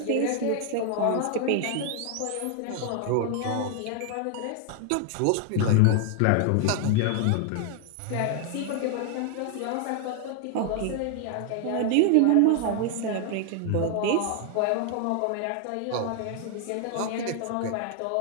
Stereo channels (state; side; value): different; both; correlation 0.00